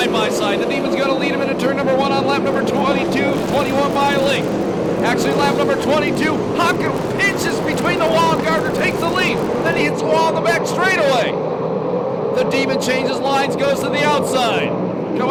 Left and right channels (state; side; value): identical; both; correlation 1.00